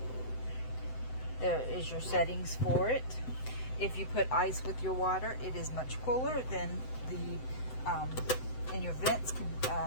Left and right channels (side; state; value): right; late; 7.8 ms